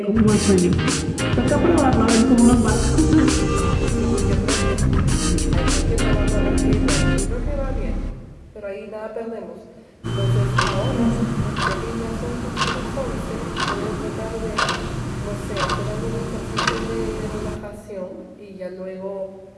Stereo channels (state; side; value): identical; both; correlation 1.00